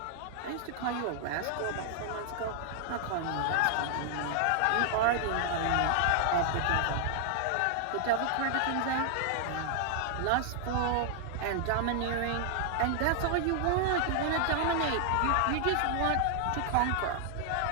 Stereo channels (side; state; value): both; different; correlation 0.00